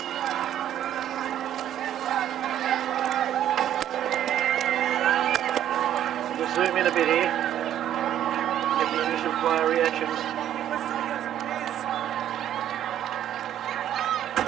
We'll zoom in a bit here. Get the initial player reactions.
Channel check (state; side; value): quieter; left; 11.1 dB